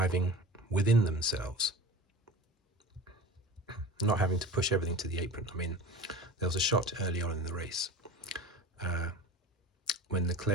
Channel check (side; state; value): both; normal; correlation 0.35